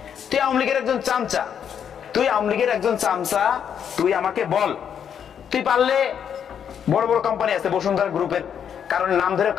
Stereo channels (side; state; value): right; quieter; 8.3 dB